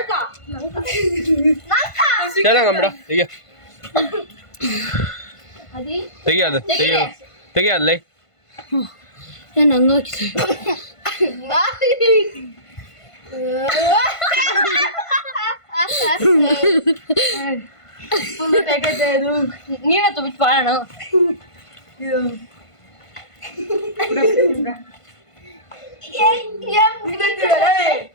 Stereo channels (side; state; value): right; late; 1.5 ms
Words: ಚೆನ್ನಾಗಂಬಿಡ ತೆಗಿಯೋದು ತೆಗಿಯೋದ್ಲೈ ನಾನು ಹಂಗಾಕಿ ನೀನೇ ತುಂಬಿಟ್ಟು ಬಾಳಣ